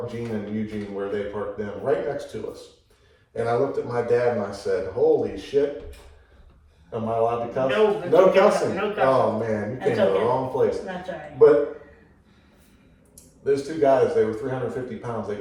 Gene and Eugene where they parked them, right next to us. And I looked at my dad and I said, "Holy shit, am I allowed to cuss?" No, No okay. cussing. No cussing. Oh man, you came That's to the okay. wrong place. That's all right. But those two guys, they were 350 pounds. They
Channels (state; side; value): identical; both; correlation 1.00